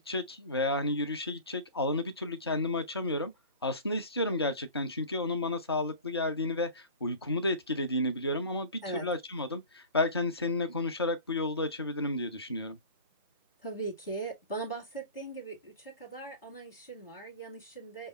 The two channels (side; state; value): both; inverted; correlation -0.37